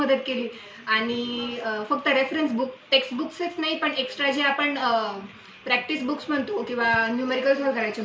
केली आणि फक्त रेफरन्स बुक, टेक्स्ट बुक्सच नाही पण एक्स्ट्रा जे आपण प्रॅक्टिस बुक्स म्हणतो किंवा न्यूमेरिकल सॉल्व करायचे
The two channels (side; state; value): both; identical; correlation 1.00